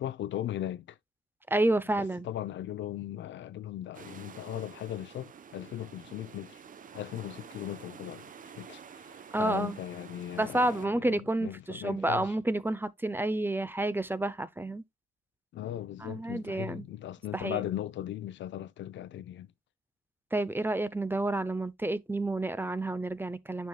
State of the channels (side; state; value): both; normal; correlation 0.72